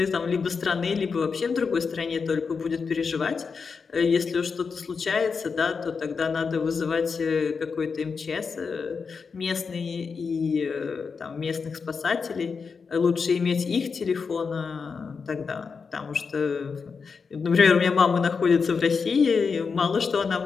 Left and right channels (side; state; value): right; quieter; 5.3 dB